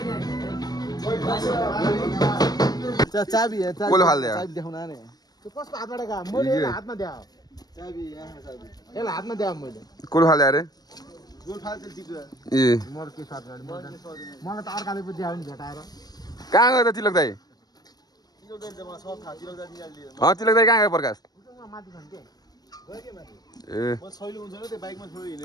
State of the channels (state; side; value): late; right; 0.19 ms